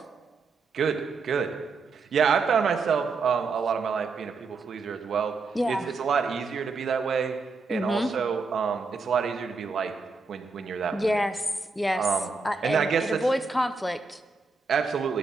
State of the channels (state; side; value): quieter; left; 4.2 dB